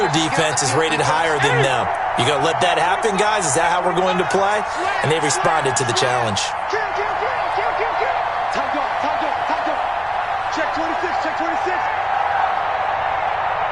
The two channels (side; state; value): both; identical; correlation 1.00